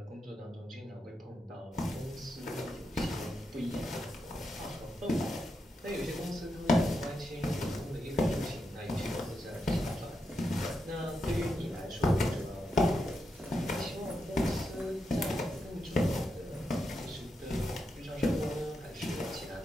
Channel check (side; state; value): both; normal; correlation 0.85